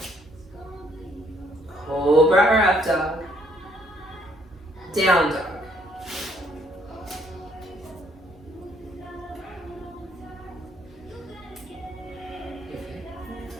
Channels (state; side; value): normal; both; correlation 0.67